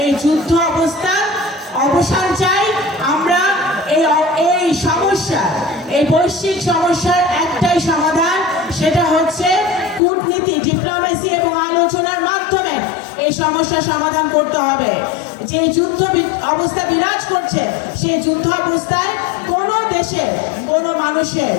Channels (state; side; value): drops out; right; at 10.0 s